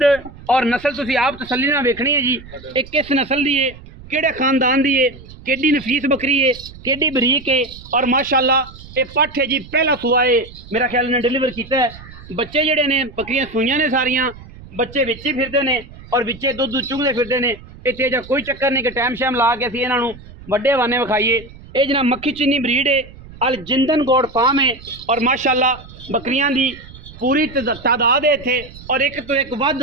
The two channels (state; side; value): noise; right; rumble, 18 dB below the sound